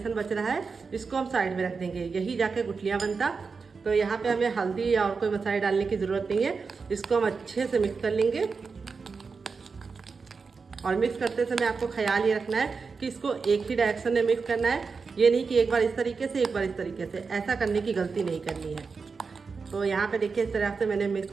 बच रहा है इसको हम साइड में रख देंगे, यही जाके गुठलियाँ बनता। तो यहाँ पे हमें हल्दी या और कोई मसाले डालने की ज़रूरत नहीं है। इसको हम अच्छे से मिक्स कर लेंगे। और मिक्स करते समय आपको ख्याल ये रखना है कि इसको एक ही डायरेक्शन में मिक्स करना है, ये नहीं कि एक बार इस तरीके से एक बार इस तरीके से। ऐसा करने की गलती नहीं करनी है। तो यहाँ पे देखिए इस तरह से मैंने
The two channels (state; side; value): quieter; left; 4.9 dB